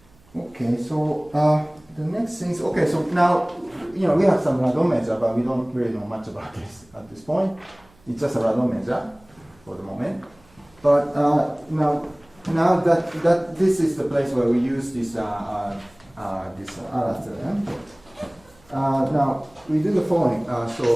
Okay, so the next thing is, okay, so now, we have some radon measure, but we don't really know much about this at this point. It's just a radon measure for the moment. But now that this is the place where we use this Allard theorem. Now we do the following.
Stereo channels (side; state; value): right; noise; hum, 29 dB below the sound